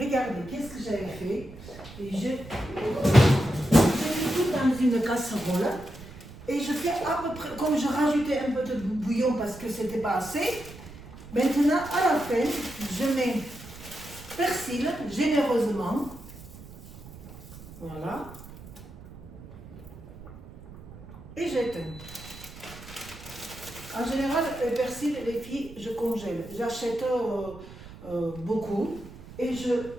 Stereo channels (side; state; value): right; noise; rumble, 16 dB below the sound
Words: qu'est-ce que j'avais fait. Et j'ai mis tout dans une casserole. Et je fais à peu près, comme je rajoutais un peu de bouillon parce que c'était pas assez. Maintenant, à la fin, je mets persil généreusement. Voilà. Et j'éteins. En général, le persil, les filles, je congèle. J'achète beaucoup et je